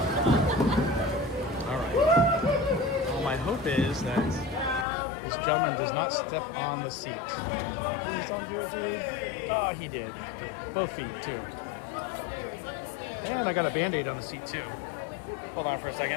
Alright. Well, my hope is that this gentleman does not step on the seat. Oh, he did. Both feet, too. And I got a Band-Aid on the seat, too. Hold on for a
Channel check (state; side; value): drops out; right; at 4.9 s